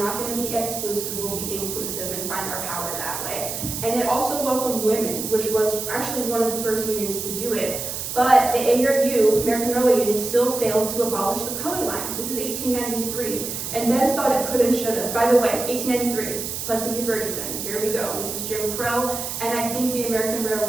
not going to be exclusive, we'll be inclusive and find our power that way. And it also welcomed women, which was actually one of the first unions to do it. But the ARU, American Railway Union, still failed to abolish the color line. This is 1893, and Debs thought it could and should have. By the way, 1893, Plessy v. Ferguson, here we go. This is Jim Crow, and I think the American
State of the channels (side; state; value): right; noise; hiss, 5 dB below the sound